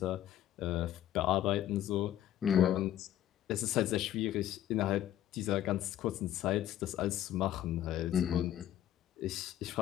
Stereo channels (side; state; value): right; quieter; 12.2 dB